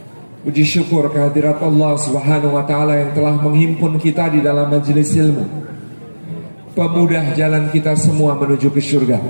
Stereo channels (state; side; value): inverted; both; correlation -1.00